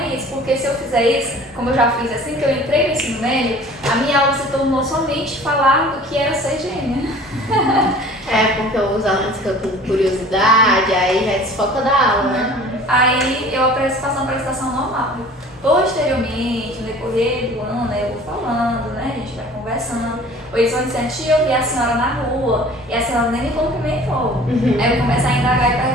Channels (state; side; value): normal; both; correlation 0.46